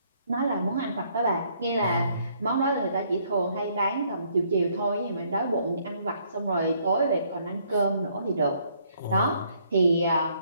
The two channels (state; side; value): inverted; both; correlation -0.67